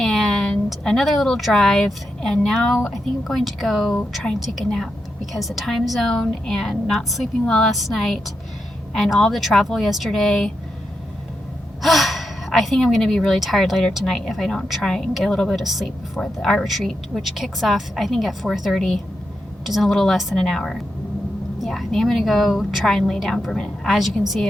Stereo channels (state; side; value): normal; both; correlation 0.86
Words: another little drive, and now I think I'm going to go try and take a nap, because the time zone and not sleeping well last night and all the travel yesterday, I think I'm going to be really tired later tonight if I don't try and get a little bit of sleep before the art retreat, which kicks off I think at 4:30, which is in a little less than an hour. Yeah, I think I'm going to go try and lay down for a minute. As you can see,